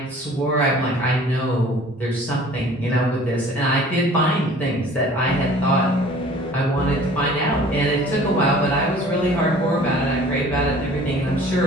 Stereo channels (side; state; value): both; normal; correlation 0.49